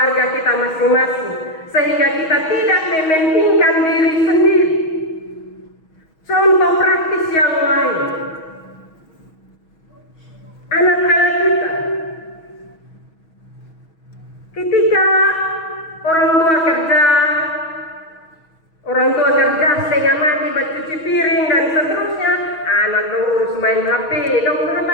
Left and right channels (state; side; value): late; right; 6.3 ms